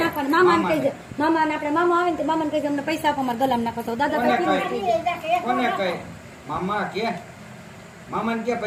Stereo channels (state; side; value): identical; both; correlation 1.00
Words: નાખવાનું. મામાને કહી દે, મામાને આપણે મામા આવે ને મામાને કહી દે અમને પૈસા આપો, અમારે ગલામ નાખો. તો દાદા કોને કહે મામા કે મામાને કે